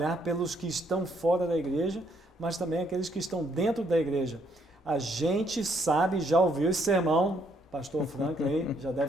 pelos que estão fora da igreja, mas também aqueles que estão dentro da igreja. A gente sabe, já ouviu esse sermão, pastor Franklin já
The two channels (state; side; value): normal; both; correlation 0.70